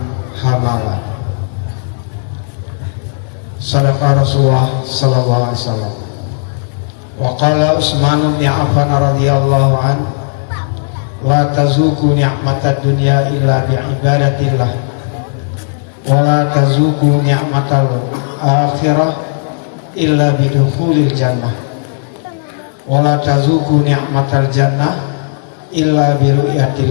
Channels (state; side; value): silent; right; digital silence